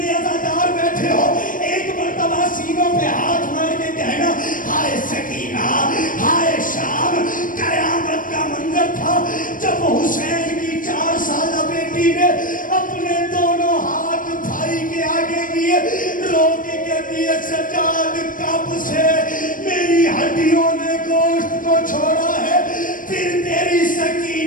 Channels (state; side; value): late; right; 0.39 ms